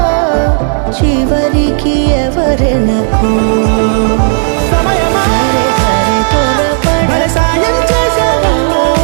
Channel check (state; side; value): silent; left; 67 dB below the other